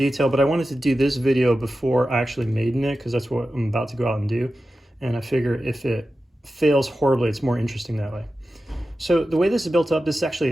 but I wanted to do this video before I actually made it, because that's what I'm about to go out and do. And I figure if it fails horribly, it's more interesting that way. So the way this is built up, this is actually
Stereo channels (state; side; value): normal; both; correlation 0.93